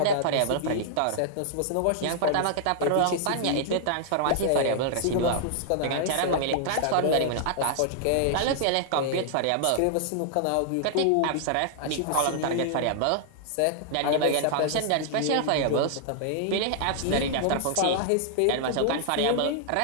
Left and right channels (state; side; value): different; both; correlation -0.01